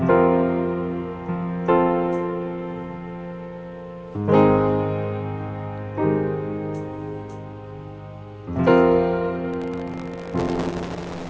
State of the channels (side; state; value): both; identical; correlation 1.00